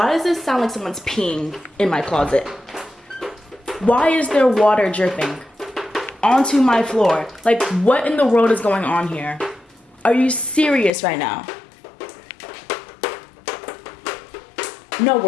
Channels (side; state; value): right; drops out; at 10.9 s